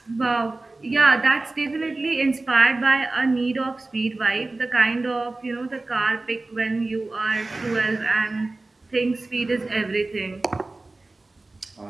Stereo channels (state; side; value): quieter; left; 3.2 dB